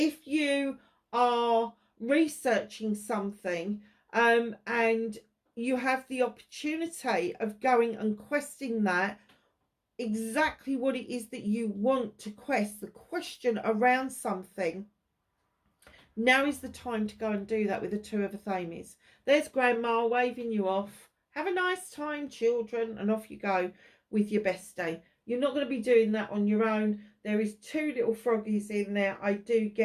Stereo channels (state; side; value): identical; both; correlation 1.00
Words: you are researching something and you have the opportunity of going and questing that, exactly what it is that you want to quest, the question around something, now is the time to go and do that with the 2 of the Thames. There's Grandma waving you off. Have a nice time, children, and off you go with your bestie. You're not going to be doing that on your own. There is 2 little froggies in there. I do